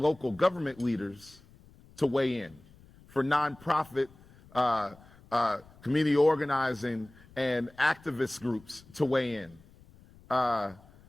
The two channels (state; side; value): noise; left; rumble, 25 dB below the sound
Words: local government leaders to weigh in, for nonprofit, community organizing and activist groups to weigh in,